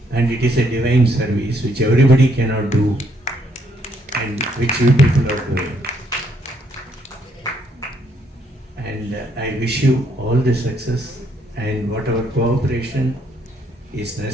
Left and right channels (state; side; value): normal; both; correlation 0.71